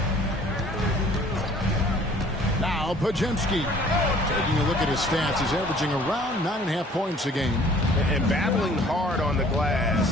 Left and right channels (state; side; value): normal; both; correlation 0.54